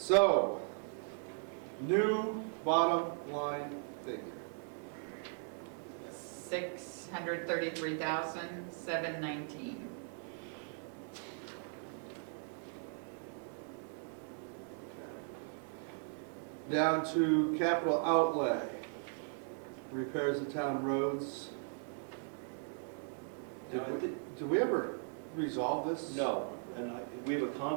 new bottom line figure. 633,719. Down to capital outlay, repairs of town roads. No, Did we ever resolve this? No, And we have a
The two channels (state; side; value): silent; left; 52 dB below the other